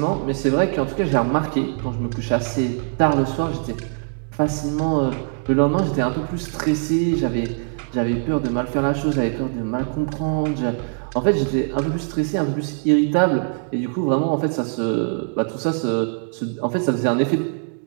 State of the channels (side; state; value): left; silent; 64 dB below the other